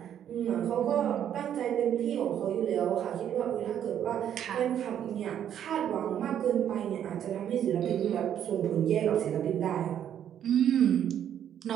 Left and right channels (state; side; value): quieter; left; 9.8 dB